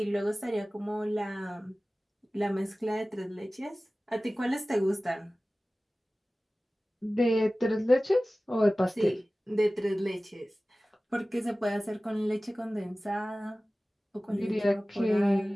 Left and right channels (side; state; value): both; normal; correlation 0.97